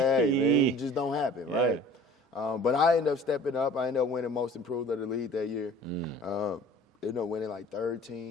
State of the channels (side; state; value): both; normal; correlation 0.47